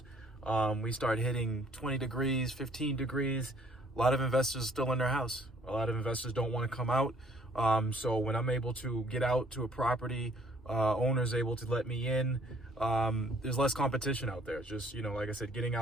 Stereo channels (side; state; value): both; normal; correlation 0.60